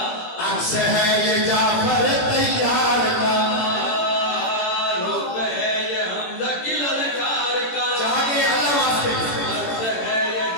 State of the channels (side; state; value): right; late; 17 ms